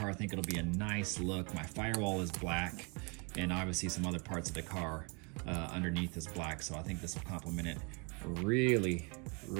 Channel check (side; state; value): left; quieter; 33.1 dB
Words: I think it'll be a nice look. My firewall is black, and obviously some other parts of the car underneath is black, so I think this will complement it